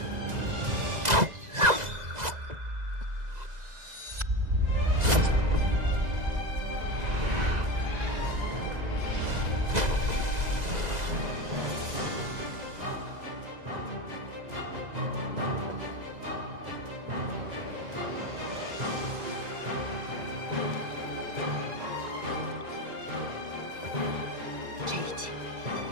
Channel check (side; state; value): left; late; 2.0 ms